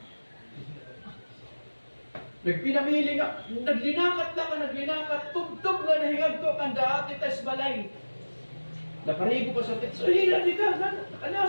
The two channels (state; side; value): inverted; both; correlation -1.00